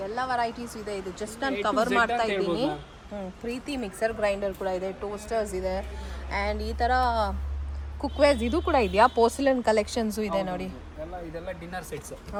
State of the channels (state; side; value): identical; both; correlation 1.00